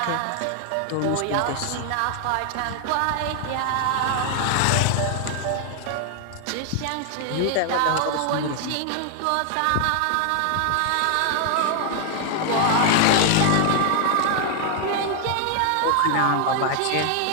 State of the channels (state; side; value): different; both; correlation 0.00